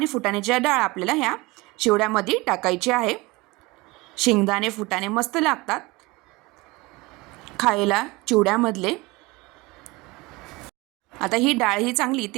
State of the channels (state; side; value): quieter; left; 22.9 dB